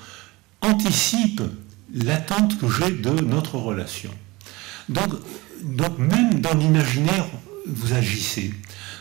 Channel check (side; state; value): left; quieter; 22.3 dB